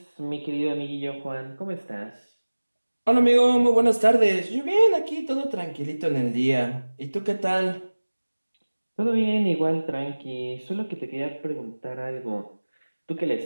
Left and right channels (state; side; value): inverted; both; correlation -1.00